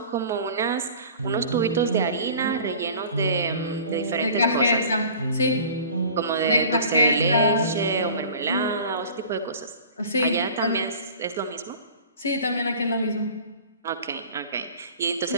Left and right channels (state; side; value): inverted; both; correlation -0.44